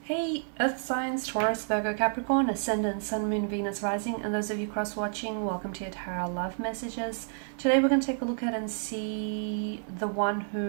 Hey, Earth signs, Taurus, Virgo, Capricorn, Ascendant, Sun, Moon, Venus, Rising, and those of you cross-watching, welcome to your Tarot Love Messages. Today we're going to take a look at and see the one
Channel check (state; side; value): silent; left; 58 dB below the other